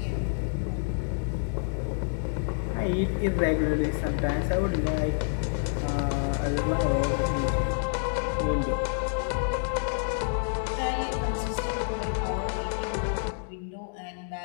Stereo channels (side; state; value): right; silent; digital silence